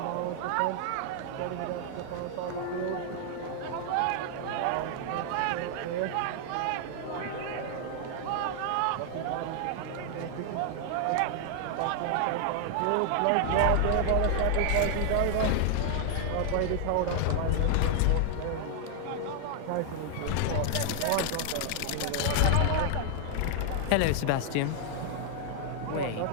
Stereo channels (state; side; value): different; both; correlation 0.00